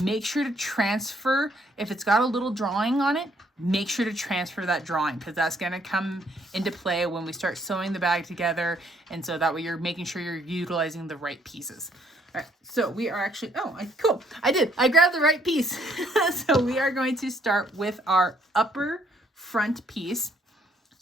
sure to transfer, if it's got a little drawing on it, make sure to transfer that drawing, because that's going to come into play when we start sewing the bag together. And so that way you're making sure you're utilizing the right pieces. All right, so we are actually, cool. I grabbed the right piece. So we are going to start with our upper front piece.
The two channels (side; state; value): both; normal; correlation 0.67